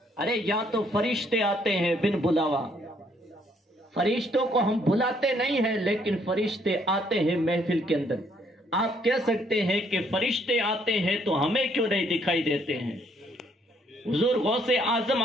ارے یا تو فرشتے آتے ہیں بن بلاوا، فرشتوں کو ہم بلاتے نہیں ہیں لیکن فرشتے آتے ہیں محفل کے اندر۔ آپ کہہ سکتے ہیں کہ فرشتے آتے ہیں تو ہمیں کیوں نہیں دکھائی دیتے ہیں؟ حضور غوث اعظم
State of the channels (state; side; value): normal; both; correlation 0.68